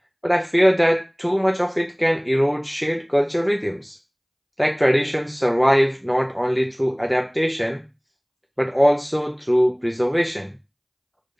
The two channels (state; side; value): identical; both; correlation 1.00